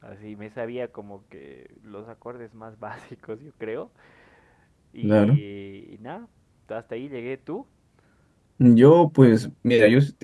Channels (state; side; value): identical; both; correlation 1.00